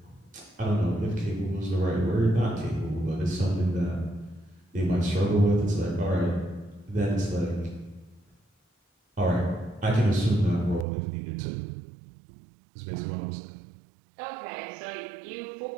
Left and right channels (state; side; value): drops out; left; at 10.9 s